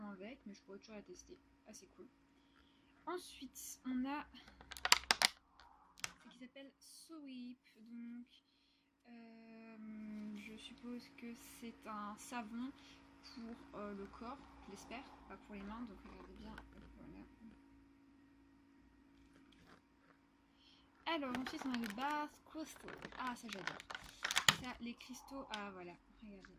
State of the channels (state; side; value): identical; both; correlation 1.00